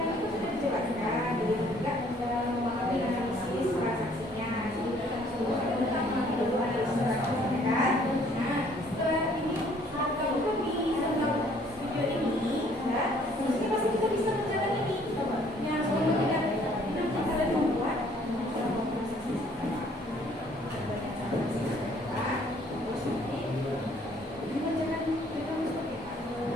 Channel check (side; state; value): both; normal; correlation 0.60